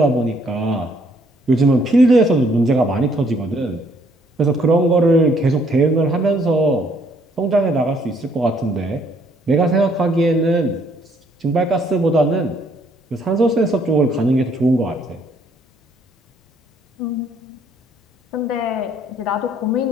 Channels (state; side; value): normal; both; correlation 0.66